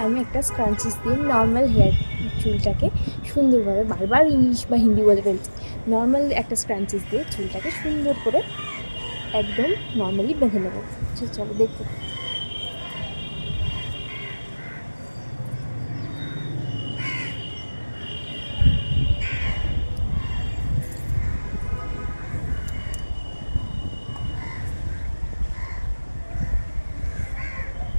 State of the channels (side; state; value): both; inverted; correlation -1.00